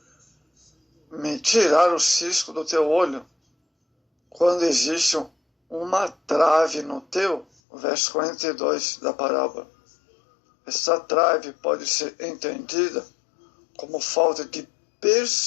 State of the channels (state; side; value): drops out; right; at 7.5 s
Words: tirar o cisco do teu olho quando existe uma trave no teu. Verso 42 da parábola. Essa trave pode ser entendida como falta de